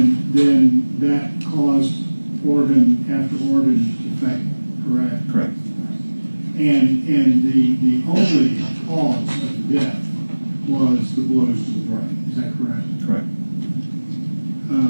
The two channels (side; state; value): both; inverted; correlation -1.00